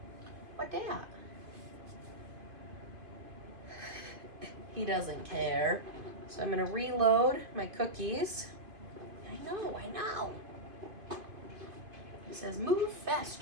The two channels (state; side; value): late; left; 2.5 ms